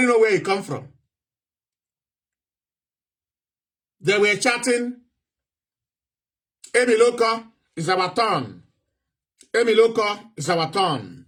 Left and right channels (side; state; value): both; identical; correlation 1.00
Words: knows where he come from. They were chatting, Emiloko is our turn. Emiloko is our turn.